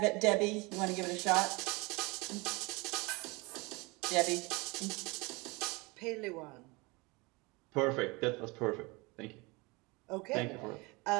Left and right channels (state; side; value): quieter; left; 25.7 dB